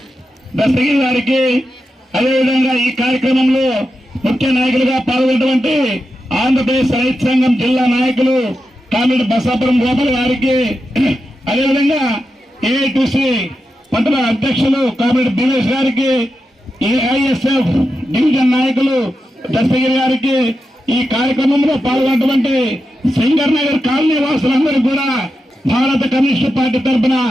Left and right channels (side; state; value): both; normal; correlation 0.89